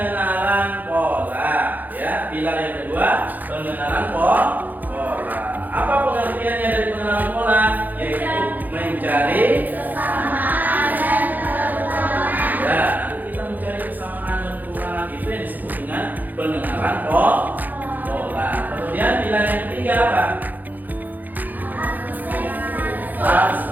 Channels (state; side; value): late; left; 0.084 ms